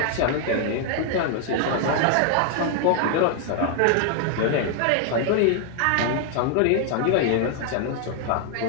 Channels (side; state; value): both; different; correlation 0.00